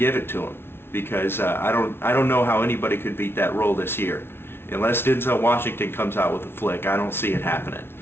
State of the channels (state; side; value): late; right; 0.11 ms